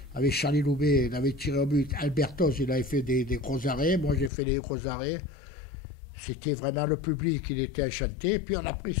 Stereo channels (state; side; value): drops out; right; at 4.3 s